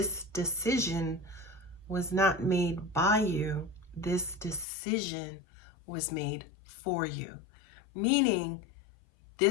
decision was not made by you. This decision was made for you. Meaning,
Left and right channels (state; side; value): drops out; right; at 4.7 s